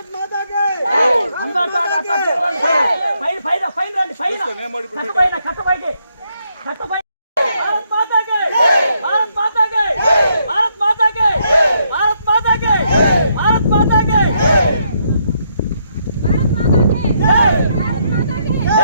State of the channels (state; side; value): inverted; both; correlation -0.75